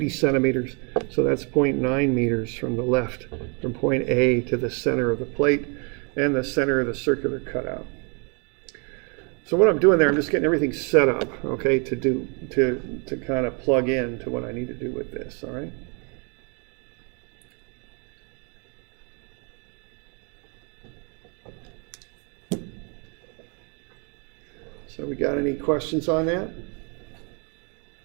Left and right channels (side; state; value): left; quieter; 35.0 dB